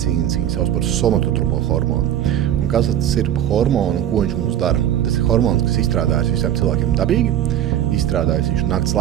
viņi sauc par somatotropo hormonu. Un kas tas ir hormonu un ko viņš mums dara? Tas ir hormons, kas izstrādājas visiem cilvēkiem dabīgi, izstrādājas viņš nakts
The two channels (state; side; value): quieter; left; 11.1 dB